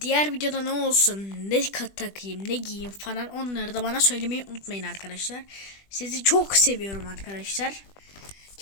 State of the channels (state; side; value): late; right; 20 ms